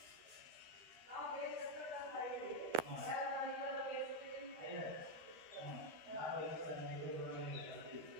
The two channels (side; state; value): left; late; 13 ms